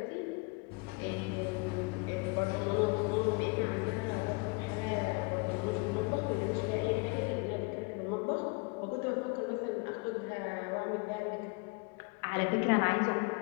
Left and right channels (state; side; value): quieter; right; 30.2 dB